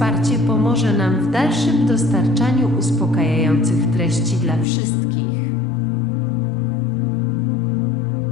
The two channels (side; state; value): right; drops out; at 4.7 s